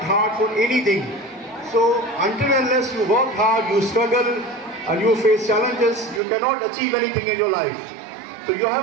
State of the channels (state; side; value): drops out; left; at 6.2 s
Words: hard for anything. So until and unless you work hard, you struggle and you face challenges, you cannot achieve anything in your life. So you